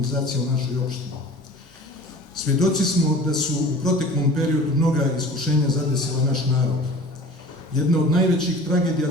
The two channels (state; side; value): normal; both; correlation 0.42